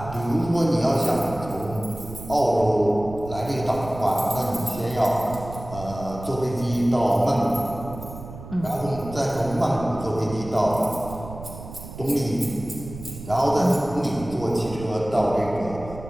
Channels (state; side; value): noise; right; rumble, 13 dB below the sound